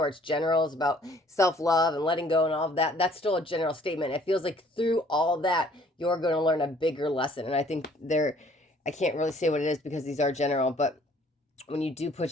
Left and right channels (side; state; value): both; normal; correlation 0.58